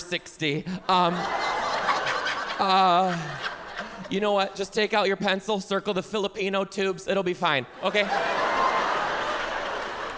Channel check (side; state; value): both; identical; correlation 1.00